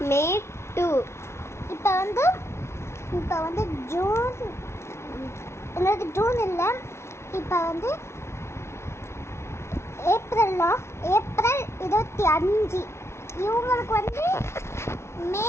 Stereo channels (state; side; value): late; right; 0.13 ms